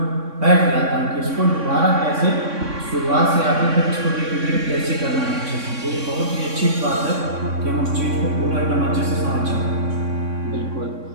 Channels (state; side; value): late; left; 3.6 ms